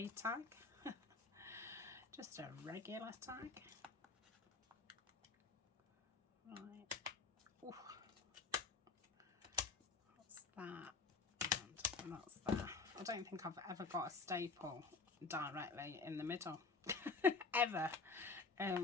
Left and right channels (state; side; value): quieter; right; 4.4 dB